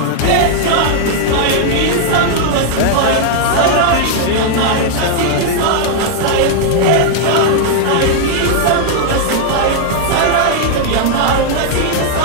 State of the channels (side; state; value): both; different; correlation -0.01